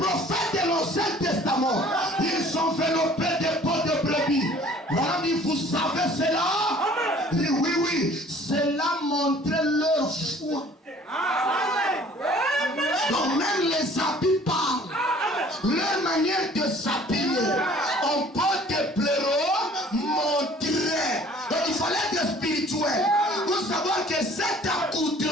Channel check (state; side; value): normal; both; correlation 0.52